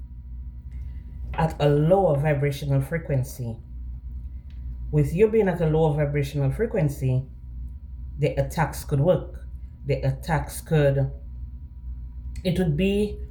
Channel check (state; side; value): identical; both; correlation 1.00